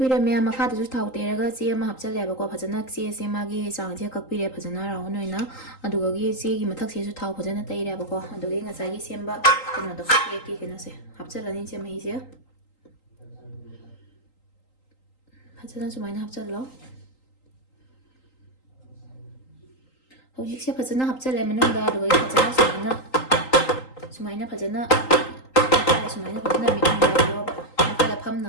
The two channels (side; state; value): right; late; 3.8 ms